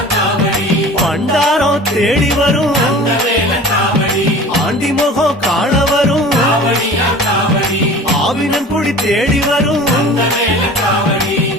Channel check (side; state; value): both; normal; correlation 0.41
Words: பண்டாரம் தேடி வரும் ஆண்டி முகம் காண வரும் ஆவினன் குடி தேடி வரும்